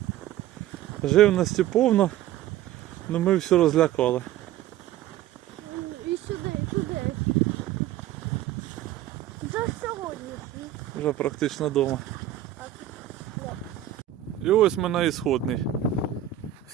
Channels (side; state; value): left; quieter; 12.4 dB